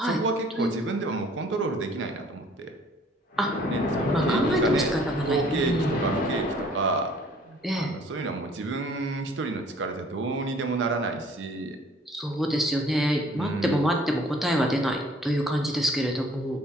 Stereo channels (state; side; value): normal; both; correlation 0.56